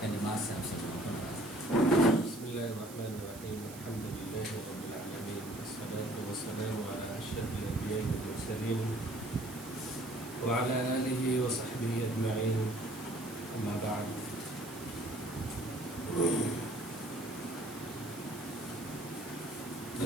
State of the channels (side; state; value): right; noise; hiss, 15 dB below the sound